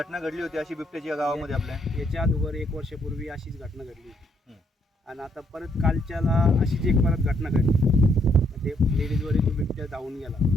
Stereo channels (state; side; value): normal; both; correlation 0.71